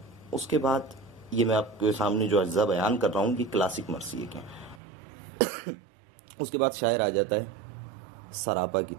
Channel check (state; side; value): drops out; left; at 4.8 s